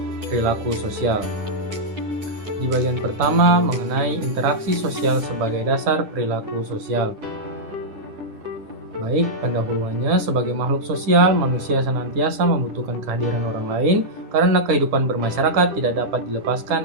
perilaku sosial. Di bagian pertama mengenai interaksi sosial sebagai dasar perilaku sosial. Baik, pendahuluannya, sebagai makhluk sosial, manusia senantiasa membutuhkan kehadiran orang lain karena kehidupan bermasyarakat tidak dapat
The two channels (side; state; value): left; late; 9.9 ms